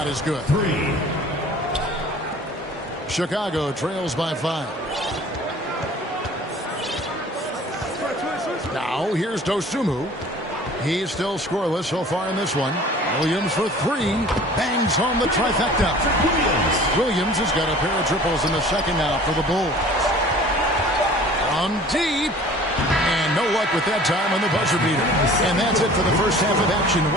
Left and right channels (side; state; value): both; normal; correlation 0.47